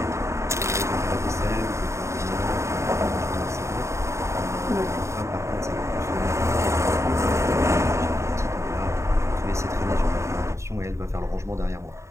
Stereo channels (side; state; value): left; late; 0.14 ms